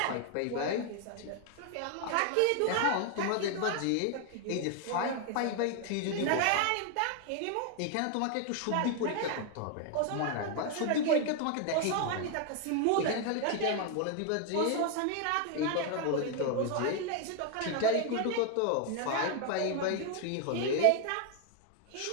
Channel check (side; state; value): both; different; correlation 0.00